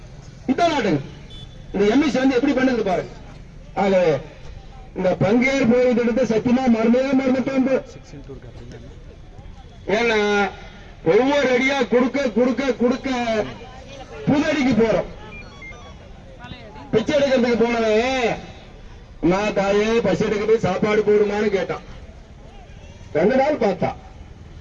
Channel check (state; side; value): identical; both; correlation 1.00